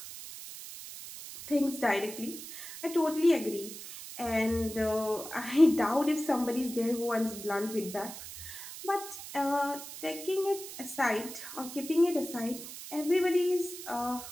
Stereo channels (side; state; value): right; noise; hiss, 11 dB below the sound